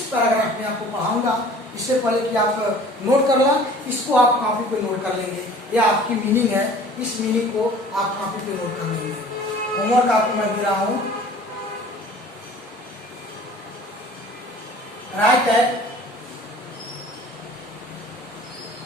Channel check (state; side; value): normal; both; correlation 0.47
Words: पैराग्राफ में आपको पढ़ाऊंगा। इससे पहले कि आप नोट कर लें, इसको आप कॉपी पे नोट कर लेंगे, यह आपकी मीनिंग है, इस मीनिंग को आप कॉपी पे नोट कर लेंगे। होमवर्क आपको मैं दे रहा हूं, right